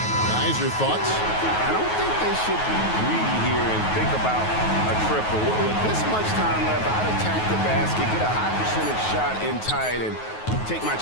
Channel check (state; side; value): late; right; 9.4 ms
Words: Guys, your thoughts? I don't think they should be greedy here and think about a triple. With this much time left, I'd attack the basket, get a high percentage shot in tight, and take my